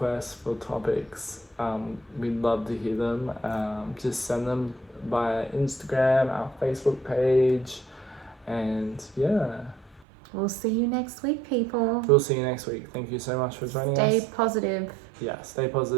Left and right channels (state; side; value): drops out; left; at 10.0 s